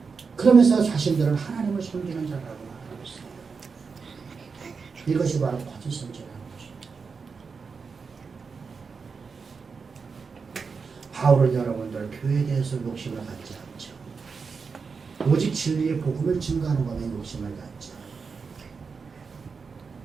그러면서 자신들은 하나님을 섬기는 자라고 말하고 있어요. 이것이 바로 거짓 선지라는 것입니다. 바울은 여러분들 교회에 대해서 욕심을 갖지 않죠. 오직 진리의 복음을 증거하는 것에 욕심을 갖죠.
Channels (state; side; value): quieter; left; 5.2 dB